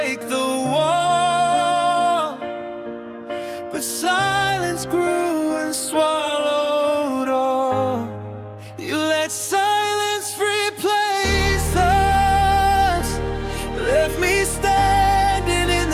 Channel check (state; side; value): identical; both; correlation 1.00